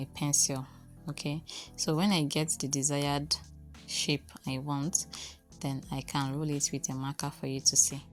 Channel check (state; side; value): identical; both; correlation 1.00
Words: pencil. Okay, so when I get the desired shape I want, then I can roll it with a marker for you to see.